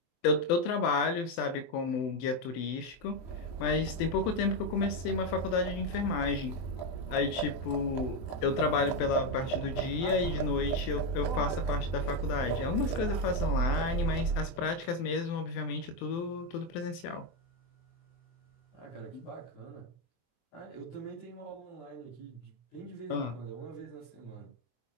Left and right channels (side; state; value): right; late; 24 ms